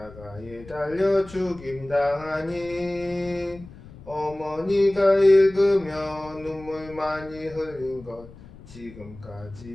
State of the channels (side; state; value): left; noise; rumble, 19 dB below the sound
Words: 달려 죽임 당하니 어머니가 읽으며 눈물 많이 흘린 것